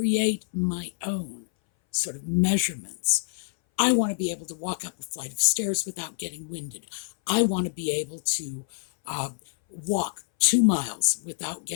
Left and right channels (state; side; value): silent; right; 59 dB below the other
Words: my own sort of measurements. I want to be able to walk up a flight of stairs without getting winded. I want to be able to walk 2 miles without